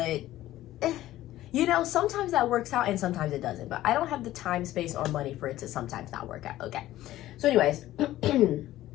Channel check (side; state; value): right; quieter; 14.7 dB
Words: sometimes that works out and sometimes it doesn't. But I don't have the time, space, or money for it to sometimes not work out. Okay. So anyways,